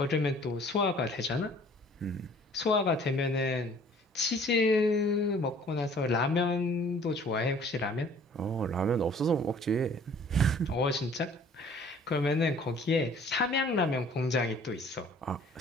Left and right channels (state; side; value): normal; both; correlation 0.53